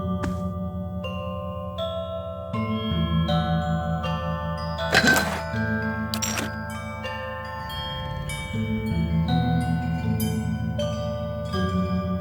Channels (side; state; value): both; identical; correlation 1.00